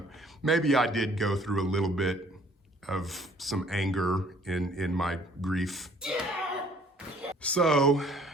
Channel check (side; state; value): both; normal; correlation 0.58